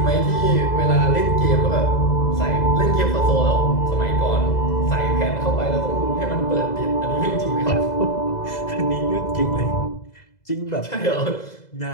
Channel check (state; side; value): late; right; 2.0 ms